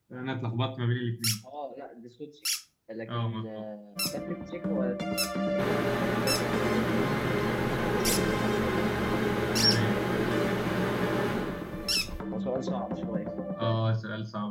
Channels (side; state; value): both; identical; correlation 1.00